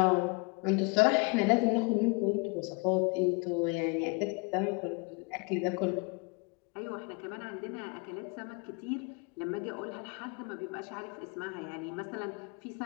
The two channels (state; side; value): quieter; right; 30.1 dB